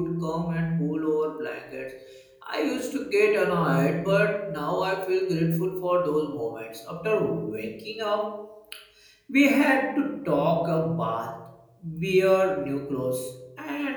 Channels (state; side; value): identical; both; correlation 1.00